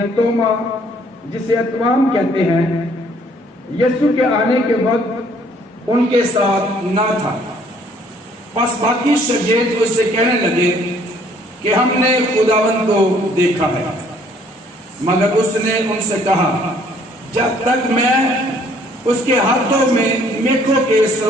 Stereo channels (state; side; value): normal; both; correlation 0.61